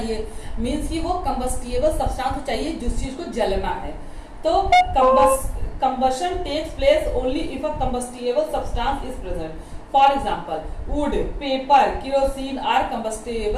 मींस कि वो कंबस्टिएबल सब्सटेंस चाहिए जिस चीज को जलना है। तो combustion takes place only if a combustible substance is present। For example wood, paper, kerosene are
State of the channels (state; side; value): identical; both; correlation 1.00